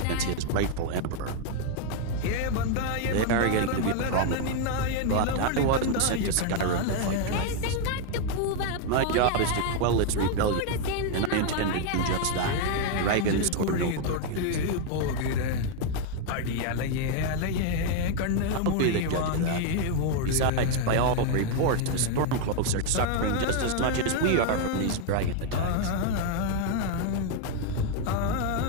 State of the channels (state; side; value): different; both; correlation 0.01